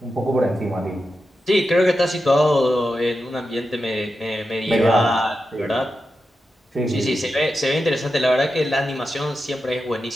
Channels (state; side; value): normal; both; correlation 0.89